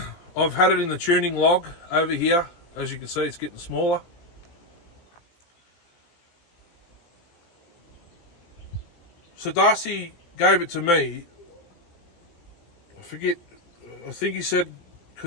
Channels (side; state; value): right; late; 18 ms